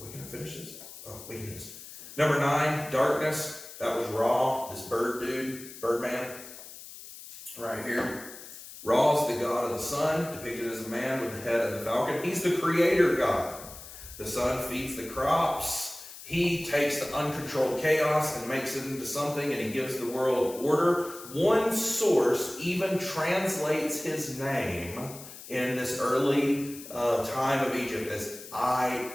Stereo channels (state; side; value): noise; left; hiss, 15 dB below the sound